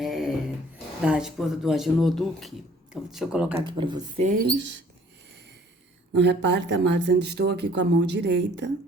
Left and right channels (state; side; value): normal; both; correlation 0.56